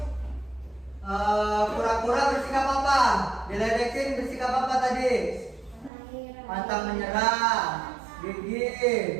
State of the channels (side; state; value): left; drops out; at 5.9 s